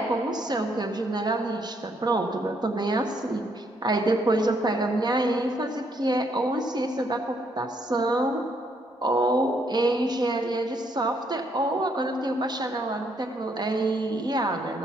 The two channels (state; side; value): normal; both; correlation 0.72